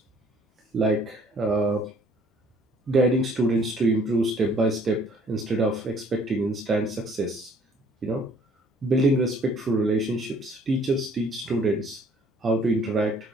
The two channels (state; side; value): normal; both; correlation 0.59